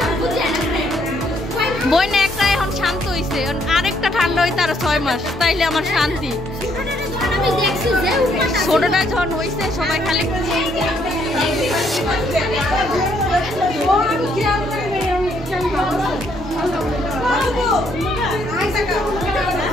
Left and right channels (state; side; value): normal; both; correlation 0.70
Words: বই না একটা এখন শান্ত হইছে, আরেকটা ঠান্ডা হইতে আরো 6 মাস, তাইলে আমার শান্তি। ছোটটা যখন হয়েছে সবাই খালি